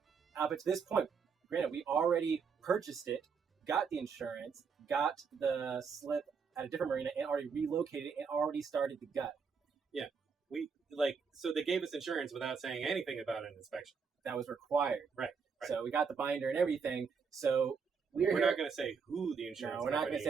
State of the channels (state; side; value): quieter; left; 5.8 dB